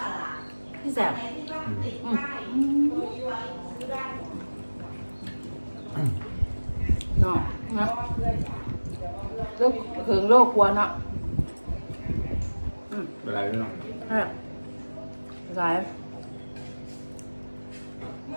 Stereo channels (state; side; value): inverted; both; correlation -1.00